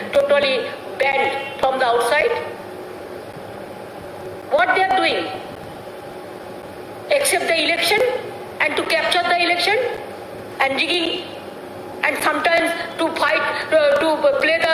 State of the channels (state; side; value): identical; both; correlation 1.00